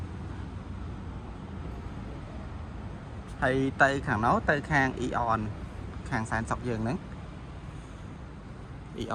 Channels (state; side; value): identical; both; correlation 1.00